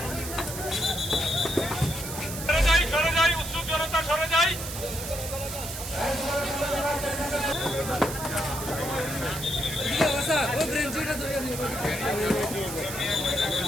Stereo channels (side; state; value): right; noise; hiss, 8 dB below the sound